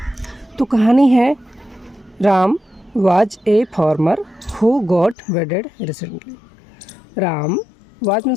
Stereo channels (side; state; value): right; drops out; at 5.2 s